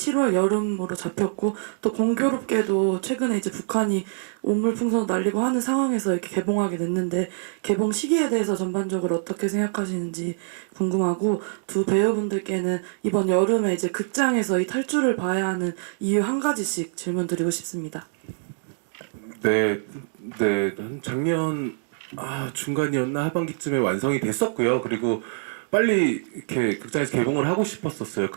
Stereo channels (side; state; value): left; silent; digital silence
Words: 여름으로 잡혔고 또 공교롭게도 최근에 이제 북한이 오물풍선 날리고 하는 상황에서 이렇게 개봉하게 됐는데 개봉 시기에 대해서 전반적으로 어떻게 생각하시는지 궁금하고 두 배우분들께는 이번 여름에 이제 극장에서 이 탈주를 봐야 하는 이유 한 가지씩 질문 드리고 싶습니다. 네, 한 작년 중간이었나 하반기쯤에 완성이 됐었고요. 그리고 빨리 이렇게 극장에서 개봉을 하고 싶었었어요.